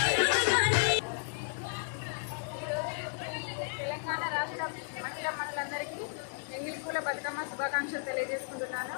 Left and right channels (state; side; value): silent; right; digital silence